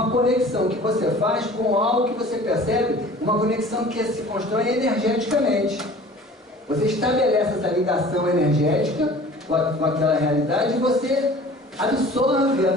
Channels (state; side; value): normal; both; correlation 0.45